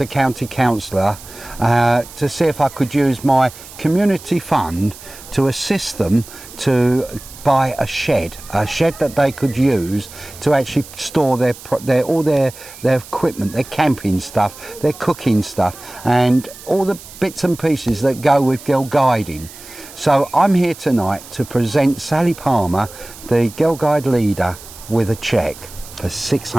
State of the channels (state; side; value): noise; right; hiss, 17 dB below the sound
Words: a county councillor to see if I could use my community fund to assist them to buy a shed that they could use to actually store all their equipment, their camping stuff, their cooking stuff, and all the bits and pieces that go with girl guiding. So I'm here tonight to present Sally Palmer, the Girl Guide leader, with a cheque for